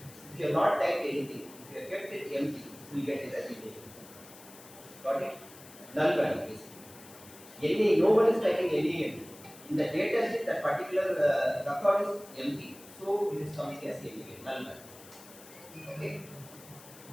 If you have not typed anything, if you have kept it empty, you will get it as NaN. Got it? Null value basically. No one is typing NaN. In the data set, that particular record is empty. So it is coming as NaN, null value. Okay?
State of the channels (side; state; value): left; noise; hiss, 19 dB below the sound